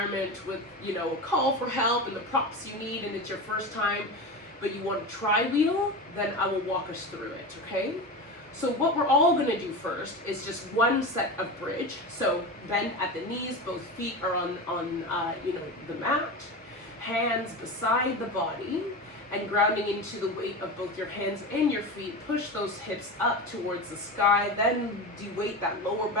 with, a call for help and the props you need and it's your first time, but you want to try wheel, then I will walk us through it, okay? So what we're all going to do first is just one set of bridge. So bend at the knees, both feet are on the mat, hands beside the body, and grounding into the weight of both your hands and your feet. Push those hips up towards the sky, then de-weight that lower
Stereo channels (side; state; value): both; normal; correlation 0.25